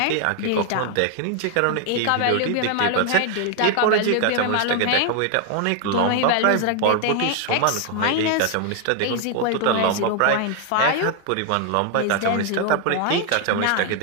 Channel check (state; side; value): different; both; correlation 0.00